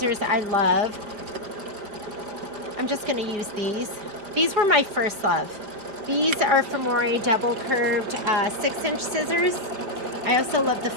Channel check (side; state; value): left; late; 5.0 ms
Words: I love. I'm just going to use these. These were my first love. These are Femore double curved 6-inch scissors. I also love the